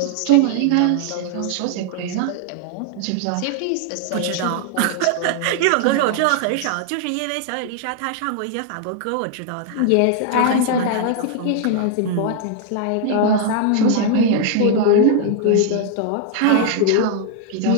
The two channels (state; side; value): different; both; correlation 0.00